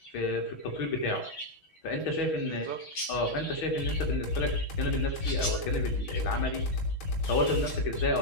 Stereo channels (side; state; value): right; late; 6.2 ms